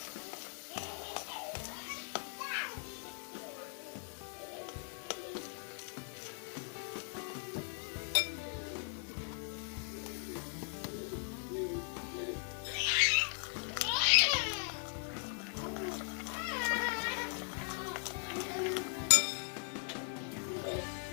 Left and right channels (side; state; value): right; silent; 52 dB below the other